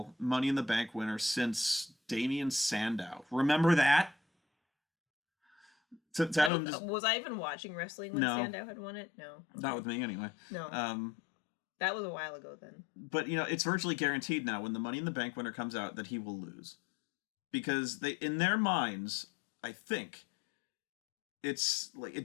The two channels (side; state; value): right; drops out; at 6.5 s